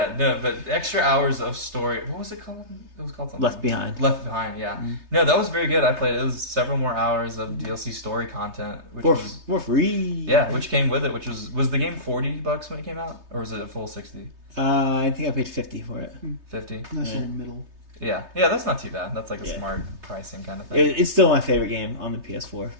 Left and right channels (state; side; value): late; left; 3.3 ms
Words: no, but extra hours of story. What was it called? It was called something. Left Behind. Left Behind, yeah. Mm-hmm. No, that was very good. I played it. It was several more hours of DLC story content, which was For free. yeah, which came with it. Which was the game $40 when it came out, or was it a full 60? I think I paid $50 for it. 50. Nice little middle. Yeah, that's not too bad. That's like a Yeah. smart pricing kind of thing. It's still my favorite game on the PS4.